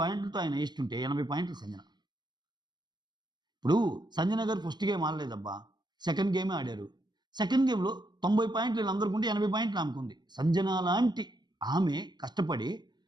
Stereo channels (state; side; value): late; left; 0.21 ms